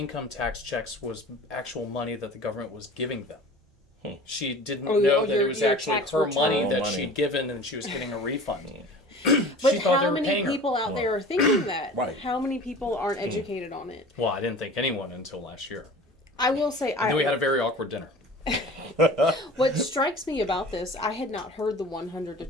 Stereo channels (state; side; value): normal; both; correlation 0.41